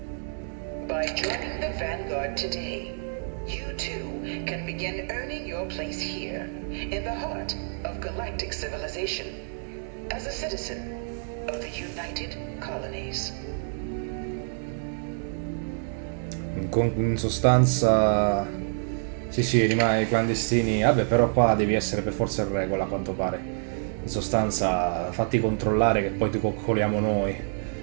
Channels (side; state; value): left; silent; 60 dB below the other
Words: By joining the Vanguard today, you too can begin earning your place here, in the heart of galactic civilization, as a citizen of the United Colonies. In sostanza, sì, rimane clandestini. Vabbè, però qua devi essere per forza in regola, a quanto pare. In sostanza, fatti controllare che poi ti coccoliamo noi.